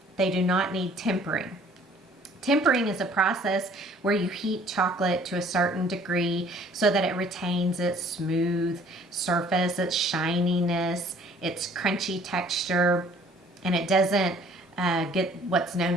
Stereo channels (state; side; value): normal; both; correlation 0.56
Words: They do not need tempering. Tempering is a process where you heat chocolate to a certain degree so that it retains its smooth surface, its shininess, its crunchy texture, and it doesn't get what's known